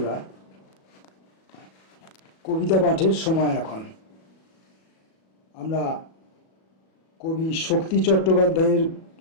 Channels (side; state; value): right; late; 37 ms